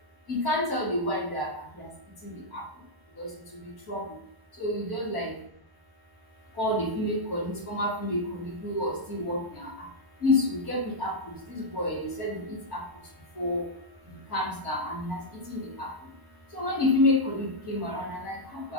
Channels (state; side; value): late; left; 1.0 ms